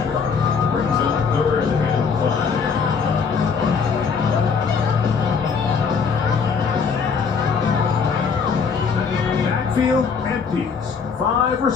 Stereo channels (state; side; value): quieter; right; 5.7 dB